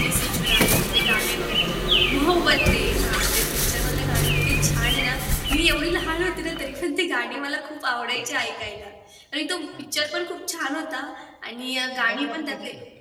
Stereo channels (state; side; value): identical; both; correlation 1.00